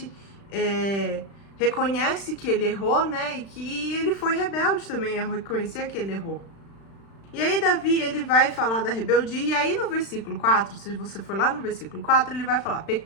reconhece que ele errou, né? E que ele foi rebelde também, a reconhecer que ele errou. E aí Davi, ele vai falar da rebeldia, e aí no versículo 4, se você for lá no versículo 4, ele vai falar:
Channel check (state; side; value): late; right; 36 ms